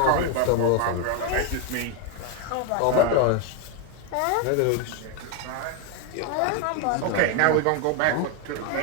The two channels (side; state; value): both; different; correlation 0.01